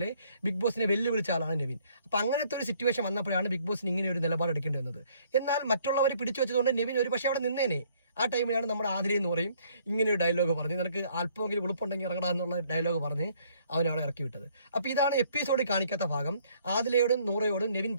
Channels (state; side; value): inverted; both; correlation -0.63